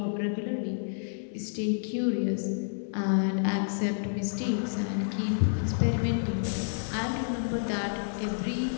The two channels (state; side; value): silent; right; digital silence